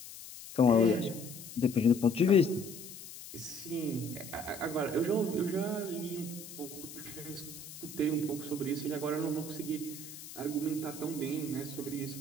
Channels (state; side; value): noise; left; hiss, 13 dB below the sound